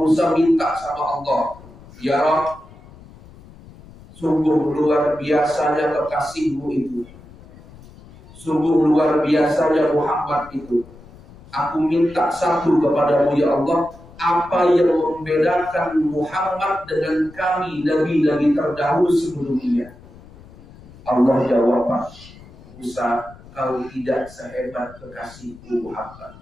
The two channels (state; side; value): noise; left; rumble, 21 dB below the sound